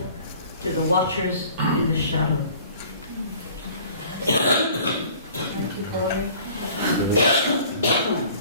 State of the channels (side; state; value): both; inverted; correlation -0.50